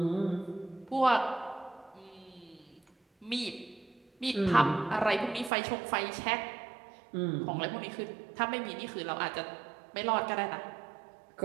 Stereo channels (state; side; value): drops out; left; at 5.5 s